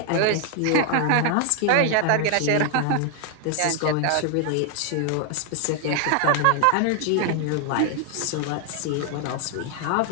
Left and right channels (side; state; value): both; different; correlation 0.00